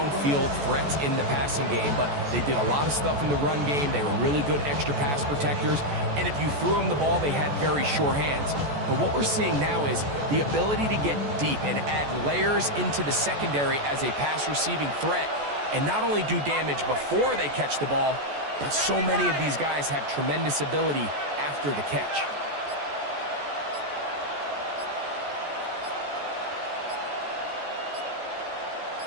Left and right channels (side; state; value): left; late; 14 ms